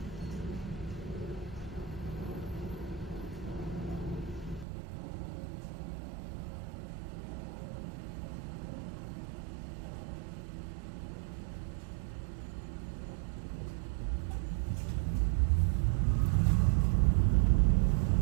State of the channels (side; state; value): left; drops out; at 4.7 s